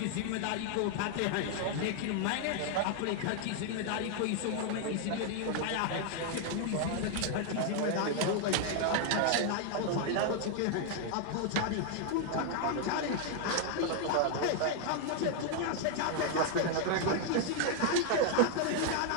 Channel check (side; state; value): both; different; correlation 0.00